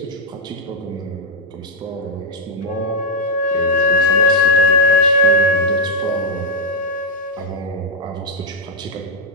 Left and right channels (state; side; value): normal; both; correlation -0.03